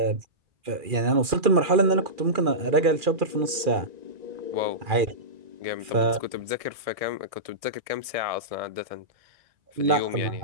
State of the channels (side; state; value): left; late; 2.4 ms